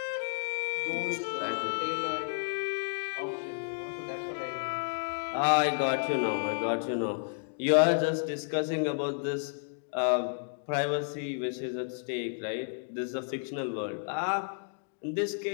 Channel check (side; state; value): right; silent; digital silence